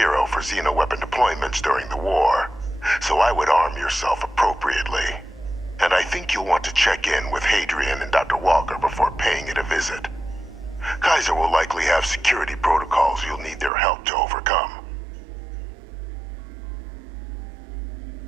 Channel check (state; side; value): drops out; left; at 13.7 s